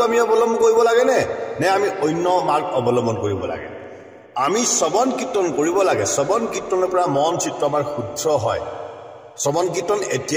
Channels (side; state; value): both; identical; correlation 1.00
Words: আমি অৱলম্বন কৰিব লাগেনে নে আমি অন্য মাৰ্গ অৱলম্বন কৰিব লাগে আমি শ্ৰৱণ কীৰ্তন কৰিব লাগে শ্ৰৱণ কীৰ্তনৰ পৰা মন চিত্ৰ আমাৰ শুদ্ধ হয় শ্ৰৱণ কীৰ্তন